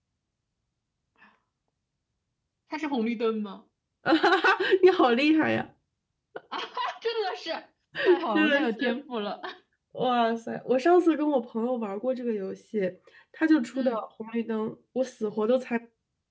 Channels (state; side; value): identical; both; correlation 1.00